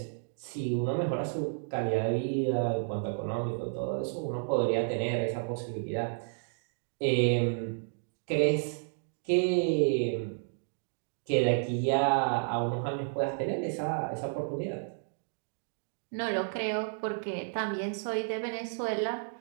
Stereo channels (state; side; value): silent; left; digital silence